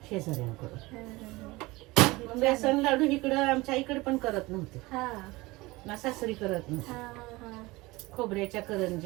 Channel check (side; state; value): left; quieter; 21.5 dB